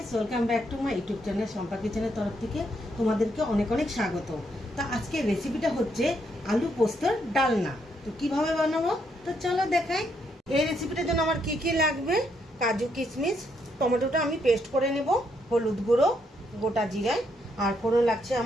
welcome back to my YouTube channel Shampa কিচেনের তরফ থেকে তোমাদেরকে অনেক অনেক স্বাগত। তো আজকের রেসিপিটা হচ্ছে আলু পোস্তর ডালনা। তো কিভাবে বানাবো তো চলো দেখাই। এই রেসিপিটার জন্য আমার কি কি লাগবে: কাজু, কিশমিশ, টমেটোটা আমি পেস্ট করে নেব, হলুদ গুঁড়ো, গোটা জিরায়, আর ফোড়ন লাগছে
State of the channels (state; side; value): normal; both; correlation 0.75